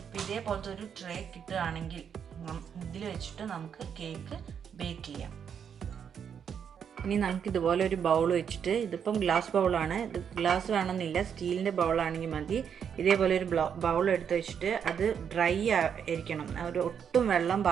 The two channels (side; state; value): left; quieter; 7.7 dB